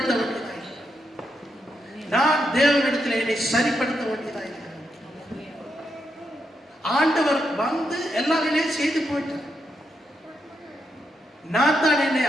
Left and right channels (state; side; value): normal; both; correlation 0.82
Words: வேண்டியதாக, நான் தேவனிடத்தில் என்னை சரிப்படுத்த வேண்டியதாக. ஆண்டவர் வந்து எல்லாமே செய்து போயிட்டார். நான் தான் என்னை